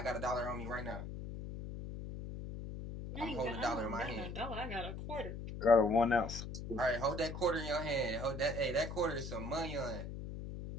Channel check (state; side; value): noise; left; hum, 7 dB below the sound